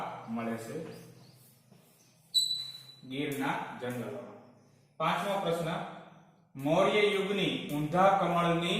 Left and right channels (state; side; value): identical; both; correlation 1.00